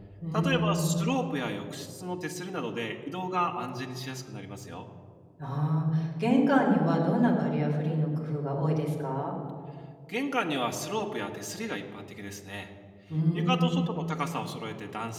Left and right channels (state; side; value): identical; both; correlation 1.00